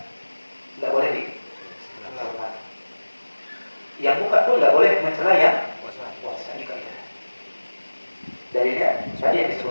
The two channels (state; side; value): inverted; both; correlation -1.00